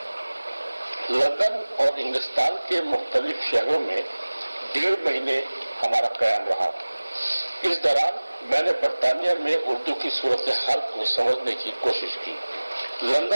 لندن اور انگلستان کے مختلف شہروں میں 1.5 مہینے ہمارا قیام رہا. اس دوران میں نے برطانیہ میں اردو کی صورتحال کو سمجھنے کی کوشش کی.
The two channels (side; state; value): both; inverted; correlation -1.00